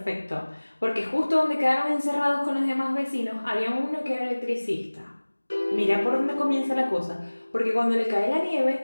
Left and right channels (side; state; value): both; inverted; correlation -1.00